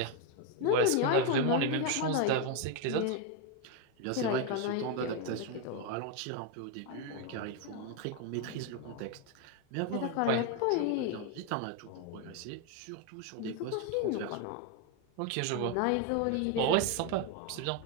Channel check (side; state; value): both; different; correlation 0.02